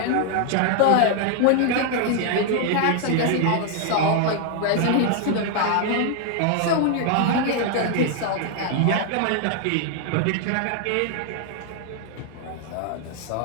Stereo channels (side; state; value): both; different; correlation 0.00